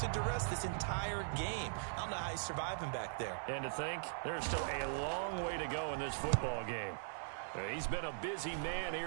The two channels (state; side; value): silent; left; 51 dB below the other